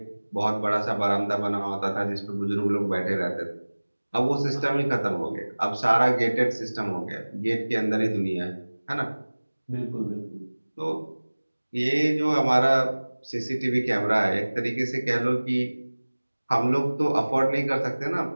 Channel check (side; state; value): both; inverted; correlation -1.00